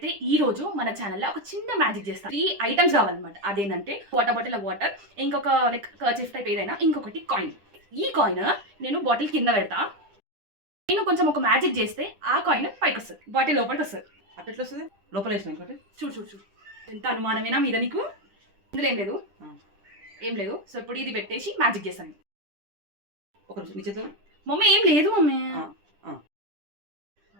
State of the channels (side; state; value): left; late; 10 ms